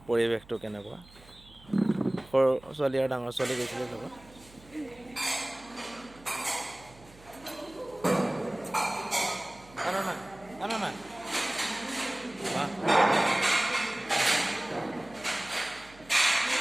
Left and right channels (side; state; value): right; noise; hum, 24 dB below the sound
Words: পৰিৱেশটো কেনেকুৱা। সৰু ছোৱালী আৰু ডাঙৰ ছোৱালী গৈছিলে লগত।